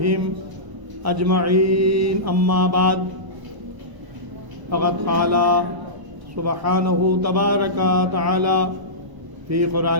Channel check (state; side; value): late; left; 1.0 ms